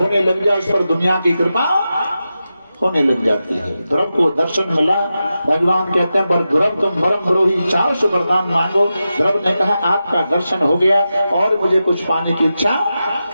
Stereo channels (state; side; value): inverted; both; correlation -0.91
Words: लग जाए उस पर दुनिया की कृपा होने लग जाती है। ध्रुव को दर्शन मिला, भगवान कहते हैं पर ध्रुव तुम परम द्रोही, चाहो सो वरदान मांगो। ध्रुव ने कहा आपका दर्शन हो गया और मुझे कुछ पाने की इच्छा